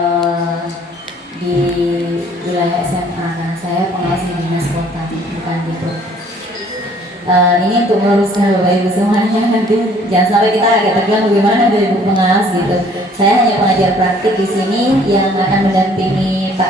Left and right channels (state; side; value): normal; both; correlation 0.57